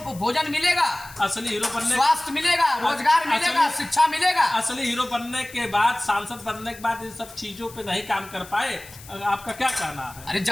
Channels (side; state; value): left; noise; hiss, 19 dB below the sound